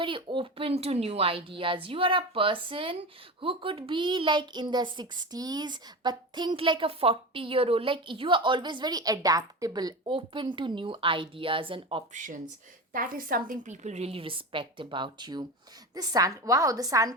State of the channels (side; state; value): both; normal; correlation 0.25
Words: open to new ideas. You are a person who could be like in their 60s but think like a 40-year-old. Like, you are always very adaptable, open to new ideas and options. That is something people really respect about you. The sun, wow, the